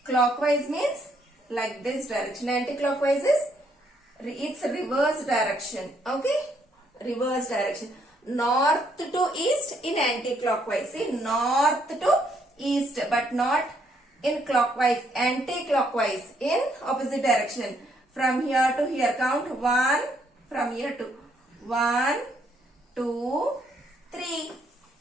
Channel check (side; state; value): both; normal; correlation 0.71